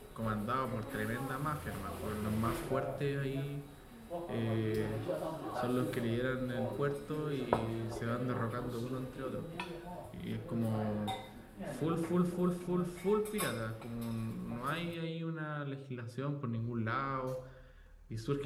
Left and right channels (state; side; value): identical; both; correlation 1.00